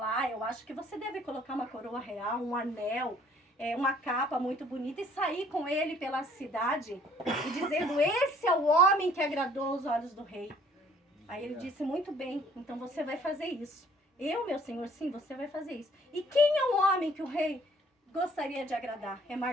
eu acho que você deve colocar uma coroa real, um anel, uma capa muito bonita e sair com ele pela cidade e dizendo, esse é o homem que agradou os olhos do rei. Aí ele disse, muito bem, então você vai fazer isso. Eu, meu senhor, sim, você vai fazer isso. E quem é o homem que o rei gostaria de agradar? É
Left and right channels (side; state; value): both; normal; correlation 0.58